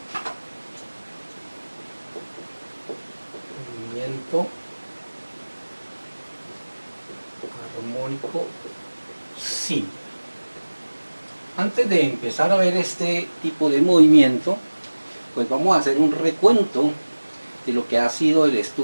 Movimiento armónico simple. Antes de empezar a ver este tipo de movimiento, pues vamos a hacer un recuento de lo que ha sido el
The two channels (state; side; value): inverted; both; correlation -1.00